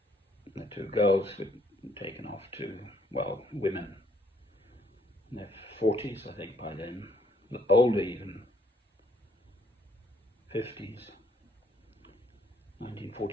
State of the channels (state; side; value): normal; both; correlation 0.67